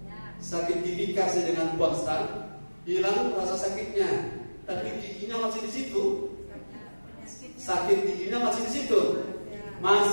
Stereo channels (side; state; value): both; inverted; correlation -1.00